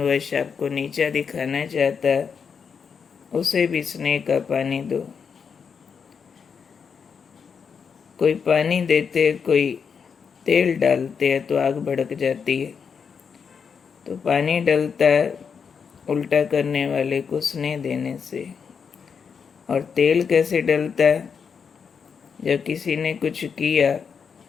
आपको नीचा दिखाना चाहता है, उसे भी स्नेह का पानी दो। कोई पानी देते, कोई तेल डालते हैं तो आग भड़क जाती है। तो पानी डलता है उल्टा करने वाले को स्नेह देने से। और तेल कैसे डलता है? जब किसी ने कुछ किया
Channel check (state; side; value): quieter; right; 6.3 dB